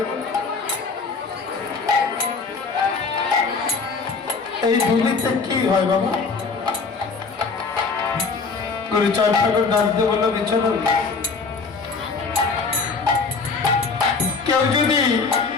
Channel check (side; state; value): right; quieter; 4.6 dB